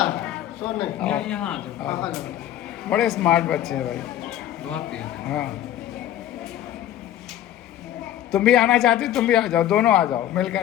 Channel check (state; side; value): quieter; right; 12.0 dB